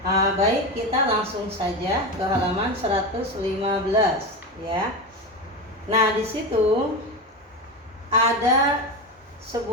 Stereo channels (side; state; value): both; normal; correlation 0.20